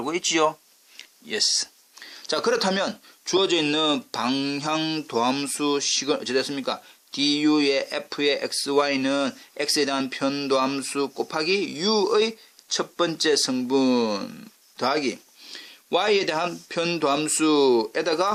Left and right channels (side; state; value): both; identical; correlation 1.00